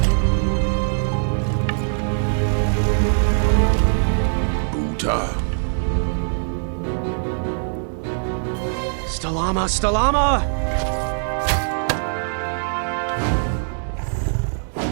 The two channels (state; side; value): silent; left; digital silence